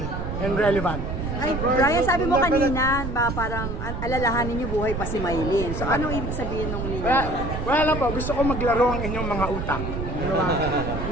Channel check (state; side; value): noise; right; rumble, 4 dB below the sound